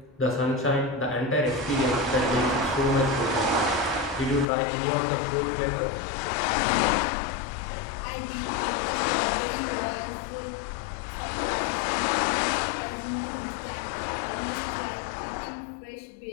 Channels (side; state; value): right; drops out; at 4.5 s